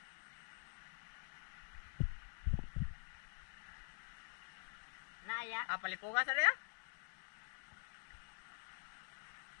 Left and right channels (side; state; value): right; silent; digital silence